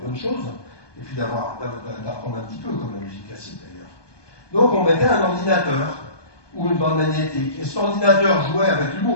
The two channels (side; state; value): right; late; 1.2 ms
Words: bonnes choses, et puis d'apprendre un petit peu, comme la musique classique d'ailleurs. Donc on mettait un ordinateur, ou une bande magnétique, et cet ordinateur jouait avec